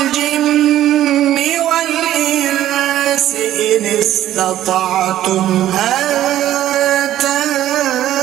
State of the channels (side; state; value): left; quieter; 12.8 dB